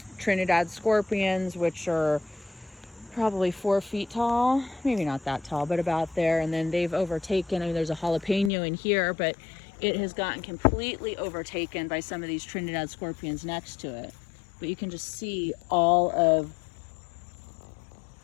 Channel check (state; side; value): drops out; right; at 8.5 s